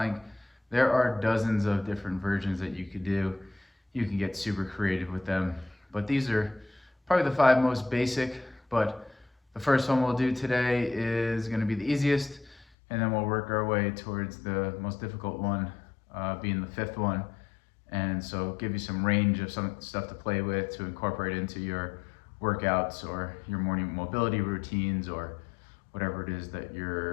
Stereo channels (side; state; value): right; drops out; at 12.7 s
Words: There are dozens of different versions that you could do. You can get super creative with them, but these are probably the 5 most basic, but the first one we'll do today is going to be the easiest, and then we'll work our way towards the most difficult one, being the 5th one. And so give you some range of some stuff to play with to incorporate into your workouts or your morning mobility routines or whatever it is that